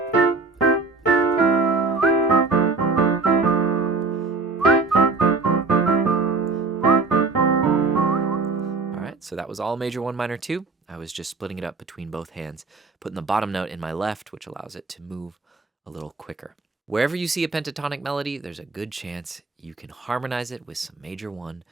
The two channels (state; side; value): quieter; left; 4.0 dB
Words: So that was all major 1, minor 2. I was just splitting it up between both hands, putting the bottom note in my left, which allows it to move a little quicker. Wherever you see a pentatonic melody, there's a good chance you can harmonize it with some major 1